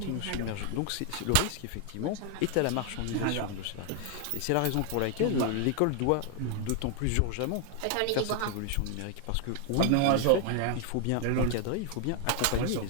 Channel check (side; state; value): both; different; correlation 0.00